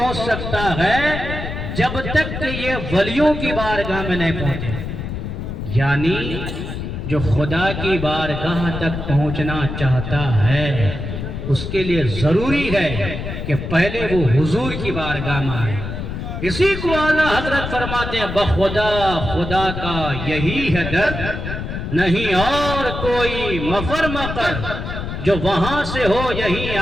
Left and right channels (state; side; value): noise; left; rumble, 6 dB below the sound